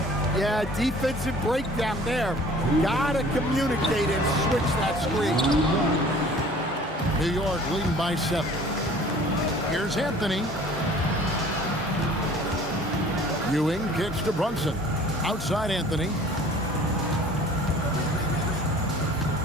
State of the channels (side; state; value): both; normal; correlation 0.49